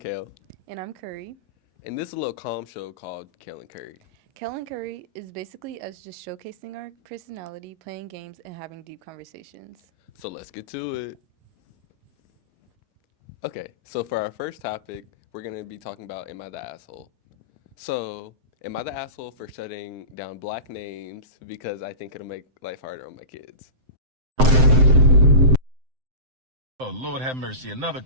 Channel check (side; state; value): left; late; 7.7 ms